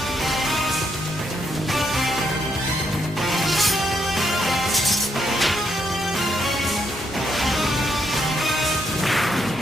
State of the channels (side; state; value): both; normal; correlation 0.77